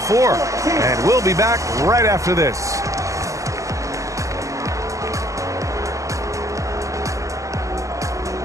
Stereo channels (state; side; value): late; left; 0.16 ms